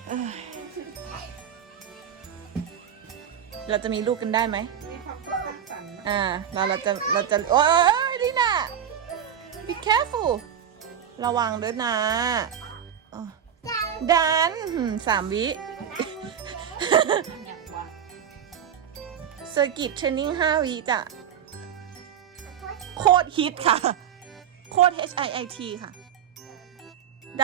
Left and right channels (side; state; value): left; quieter; 9.0 dB